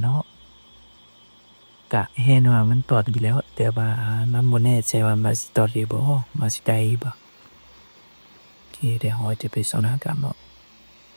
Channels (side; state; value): both; inverted; correlation -1.00